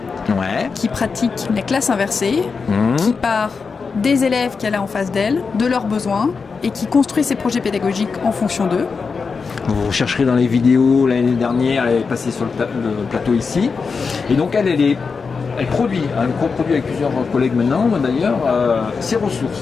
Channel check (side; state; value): right; quieter; 5.1 dB